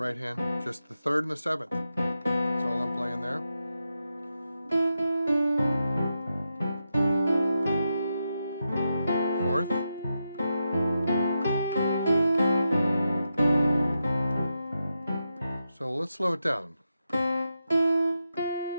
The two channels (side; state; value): both; inverted; correlation -0.87